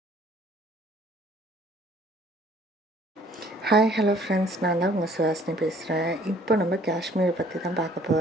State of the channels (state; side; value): normal; both; correlation 0.57